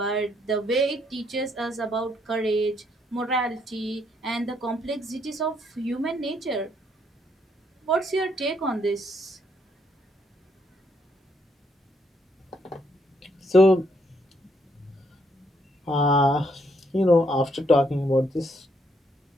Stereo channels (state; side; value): normal; both; correlation 0.72